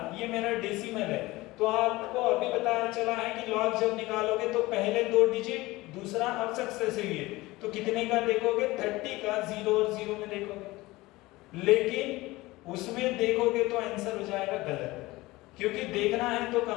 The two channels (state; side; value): quieter; right; 20.0 dB